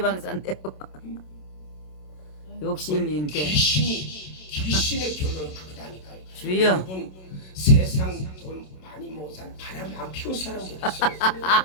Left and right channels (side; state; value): right; late; 27 ms